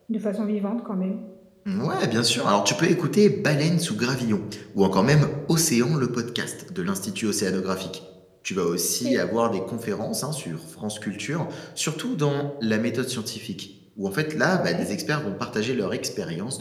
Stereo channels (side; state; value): both; identical; correlation 1.00